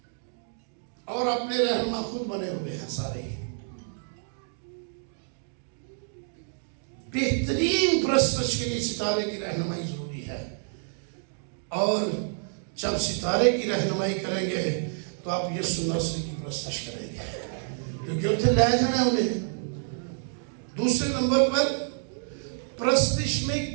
اور اپنے رہنما خود بنے ہوئے ہیں سارے بہترین پرستش کے لیے ستارے کی رہنمائی ضروری ہے اور جب ستارے کی رہنمائی کریں گے تو آپ یسوع ناصری کی پرستش کریں گے کیونکہ اتنے لے جانا ہے انہیں دوسرے نمبر پر پرستش میں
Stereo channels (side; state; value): left; silent; digital silence